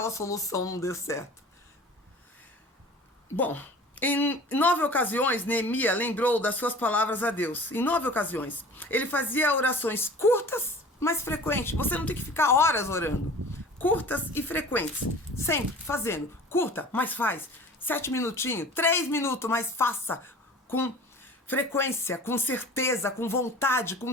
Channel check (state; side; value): normal; both; correlation 0.42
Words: solução não deu certo. Bom, em 9 ocasiões, Neemias lembrou das suas palavras a Deus. Em 9 ocasiões. Ele fazia orações curtas, mas frequentes. Você não tem que ficar horas orando. Curtas e frequentes. Sempre fazendo. Curta, mas faz. 7 minutinhos, 3 minutos, mas faça com frequência, com certeza, com vontade, com